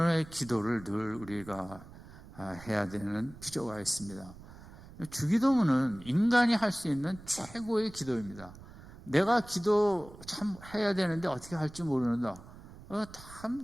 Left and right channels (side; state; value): right; noise; rumble, 18 dB below the sound